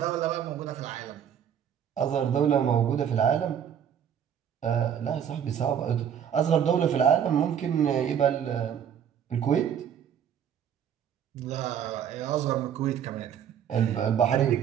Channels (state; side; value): quieter; left; 8.8 dB